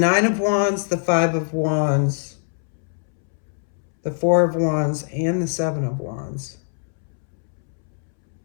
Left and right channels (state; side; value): silent; right; 64 dB below the other